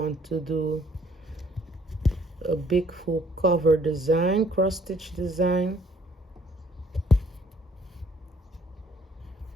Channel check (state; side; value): normal; both; correlation 0.62